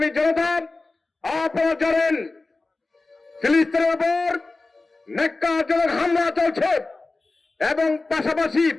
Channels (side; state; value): right; quieter; 3.4 dB